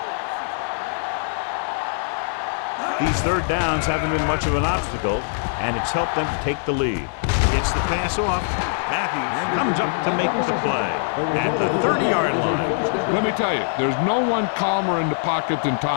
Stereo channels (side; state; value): right; silent; digital silence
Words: Oh, this is tough for you. These 3rd downs haven't been much of an obstacle, and it's helped them to take the lead. Gets the pass off. Matthews comes up to make the play at the 30-yard line. Let me tell you, there's no one calmer in the pocket than